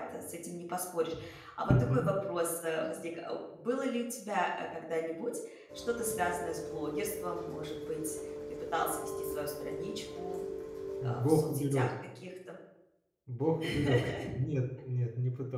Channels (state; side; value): identical; both; correlation 1.00